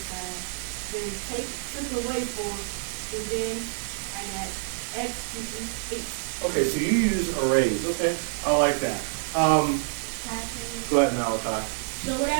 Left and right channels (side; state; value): left; silent; digital silence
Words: side, then took away 4, and then I got x equals 8. Okay, so you use arrays. Okay, I like that. Go ahead, Malachi. So what I